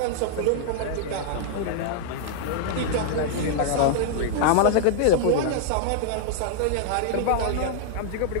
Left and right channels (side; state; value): both; different; correlation -0.01